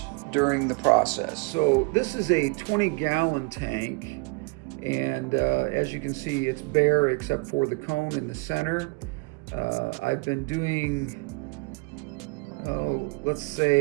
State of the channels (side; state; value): left; quieter; 29.8 dB